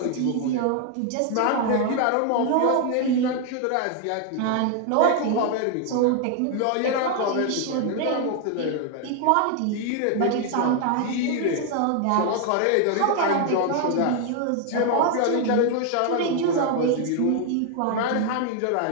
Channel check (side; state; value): both; different; correlation 0.00